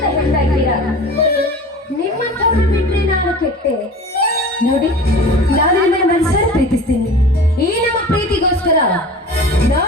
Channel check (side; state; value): both; normal; correlation 0.38